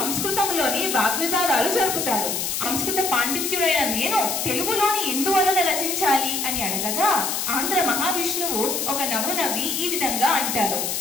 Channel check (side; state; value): left; noise; hiss, 1 dB below the sound